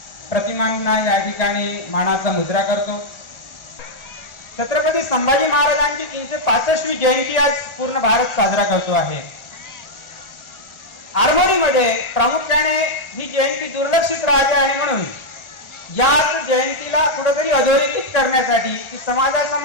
प्रतिमांना या ठिकाणी मानाचा मुद्रा करतो. छत्रपती संभाजी महाराजांची 365वी जयंती आज पूर्ण भारत साजरा करतो आहे. आरमोरीमध्ये प्रामुख्याने ही जयंती दुर्लक्षित राहते आणि म्हणून याच जयंतीला कुठेतरी अधोरेखित करण्यासाठी, ती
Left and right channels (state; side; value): late; right; 1.4 ms